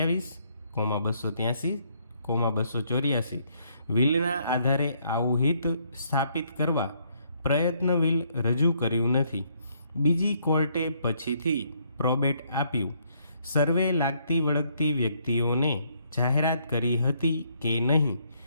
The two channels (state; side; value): inverted; both; correlation -0.69